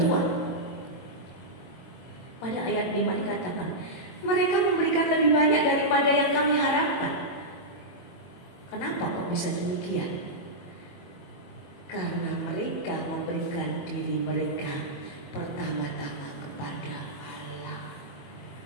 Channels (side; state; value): right; late; 22 ms